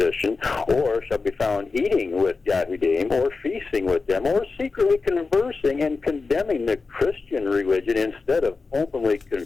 or shall be found eating with Yahudim, or feasting with them, or secretly conversing and condemning the Christian religion instead of openly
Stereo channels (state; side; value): quieter; right; 4.2 dB